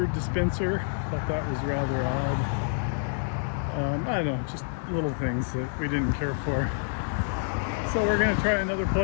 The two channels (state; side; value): silent; right; digital silence